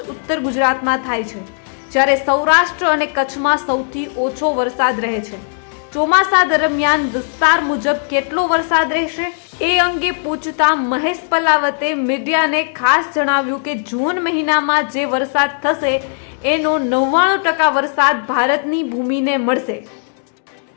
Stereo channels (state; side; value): silent; right; digital silence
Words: ઉત્તર ગુજરાતમાં થાય છે, જ્યારે સૌરાષ્ટ્ર અને કચ્છમાં સૌથી ઓછો વરસાદ રહે છે. ચોમાસા દરમિયાન વિસ્તાર મુજબ કેટલો વરસાદ રહેશે એ અંગે પૂછતા મહેશ પલાવતે મીડિયાને ખાસ જણાવ્યું કે જૂન મહિનામાં જે વરસાદ થશે એનો 99% વરસાદ ભારતની ભૂમિને મળશે.